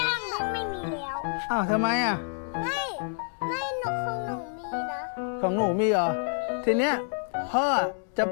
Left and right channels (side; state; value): right; silent; 59 dB below the other